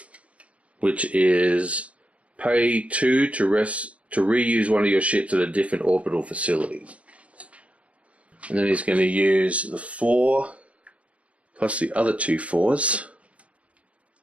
which is pay 2 to reuse one of your ships at a different orbital facility. And then he's going to use the 4 plus the other 2 4s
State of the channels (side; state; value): left; late; 0.064 ms